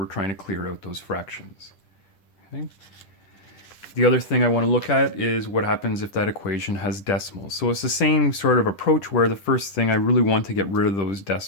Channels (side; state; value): right; late; 10 ms